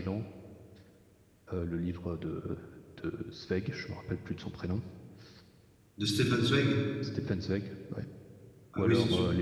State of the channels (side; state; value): both; identical; correlation 1.00